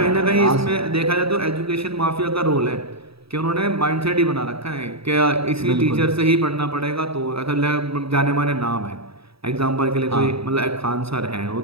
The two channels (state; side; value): late; left; 0.77 ms